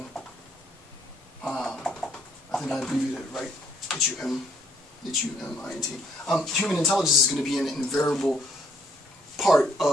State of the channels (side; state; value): both; normal; correlation 0.67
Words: I think I abbreviated it right, H-U-M-I-N-T. Human intelligence is going to be an invariable part